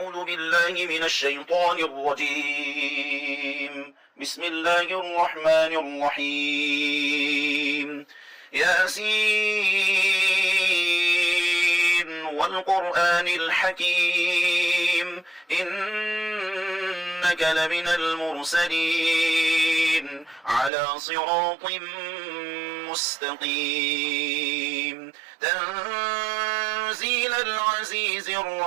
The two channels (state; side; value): drops out; left; at 20.7 s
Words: بالله من الشيطان الرجيم. بسم الله الرحمن الرحيم. ياسين والقرآن الحكيم إنك لمن المرسلين على صراط مستقيم تنزيل العزيز